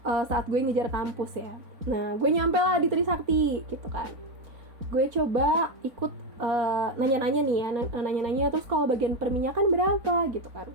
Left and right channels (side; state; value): left; late; 4.0 ms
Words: saat gue ngejar kampus ya. Nah, gue nyampe lah di Trisakti gitu kan. Gue coba ikut nanya-nanya nih ya, nanya-nanya terus kalau bagian perminyakan berapa gitu kan.